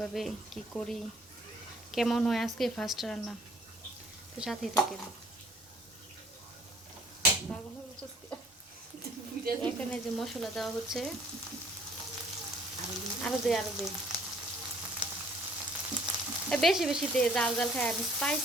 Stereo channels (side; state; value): both; normal; correlation 0.56